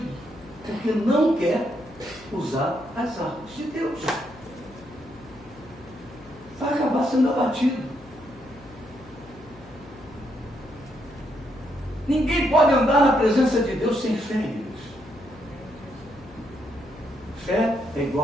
porque não quer usar as armas de Deus. Vai acabar sendo abatido. Ninguém pode andar na presença de Deus sem fé, irmãos. Fé é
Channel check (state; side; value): noise; left; hum, 21 dB below the sound